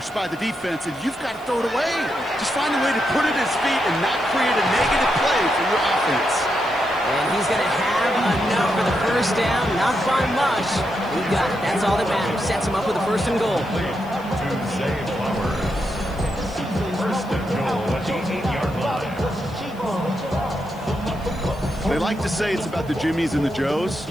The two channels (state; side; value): noise; left; hiss, 26 dB below the sound